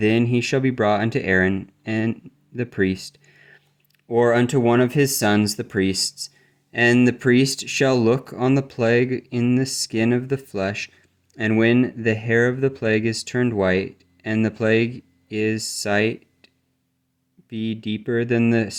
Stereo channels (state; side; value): identical; both; correlation 1.00